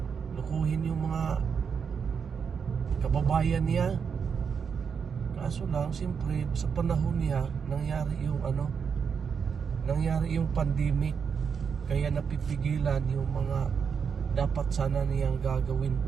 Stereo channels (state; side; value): quieter; left; 6.5 dB